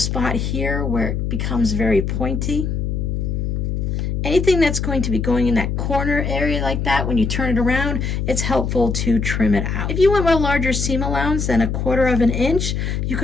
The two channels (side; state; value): left; noise; hum, 1 dB below the sound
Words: here where it becomes very pointy. Anything that's going to be going in that corner area like that, when you turn it around, it's helpful to trim it out. If you want a larger seam allowance than 1/4 of an inch, you